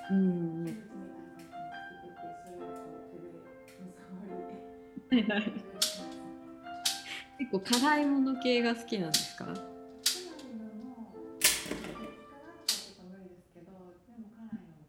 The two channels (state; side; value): identical; both; correlation 1.00